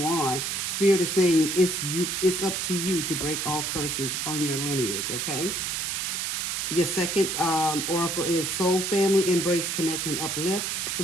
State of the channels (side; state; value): right; noise; hiss, 1 dB below the sound